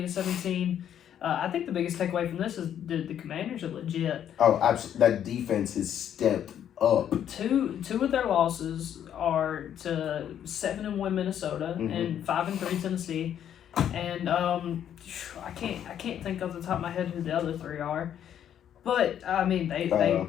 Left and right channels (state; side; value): quieter; right; 9.8 dB